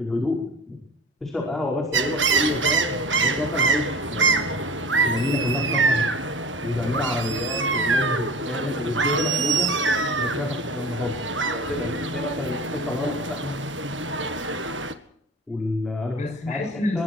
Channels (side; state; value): both; normal; correlation 0.37